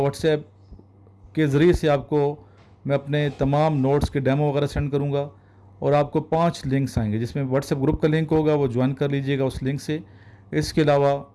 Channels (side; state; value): both; identical; correlation 1.00